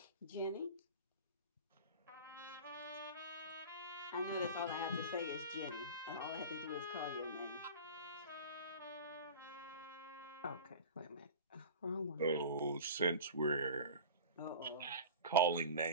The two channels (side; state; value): both; inverted; correlation -0.33